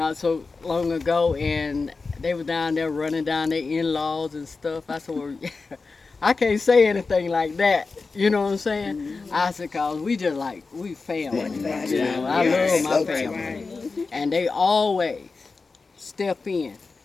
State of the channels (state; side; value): quieter; right; 4.2 dB